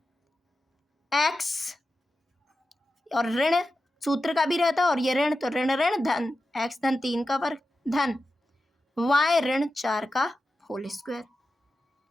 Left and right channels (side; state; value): both; normal; correlation 0.91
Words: x और ऋण सूत्र का भी रहता है और ये ऋण, तो ऋण ऋण धन x धन 3 का वर्ग धन y ऋण 4 का होल स्क्वायर।